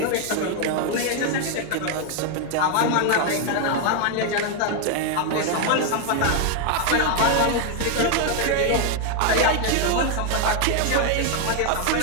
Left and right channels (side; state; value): both; different; correlation 0.00